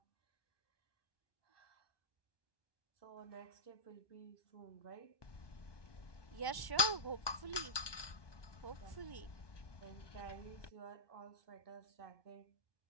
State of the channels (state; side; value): late; right; 1.2 ms